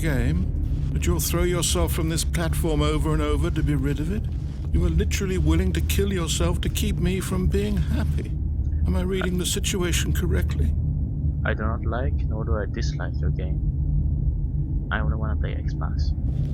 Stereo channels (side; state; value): both; identical; correlation 1.00